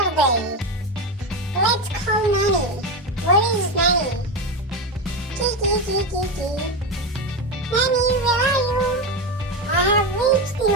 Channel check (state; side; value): normal; both; correlation 0.15